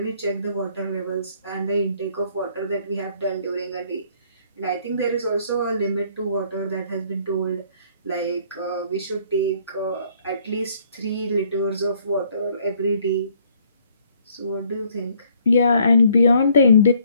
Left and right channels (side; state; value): both; inverted; correlation -0.63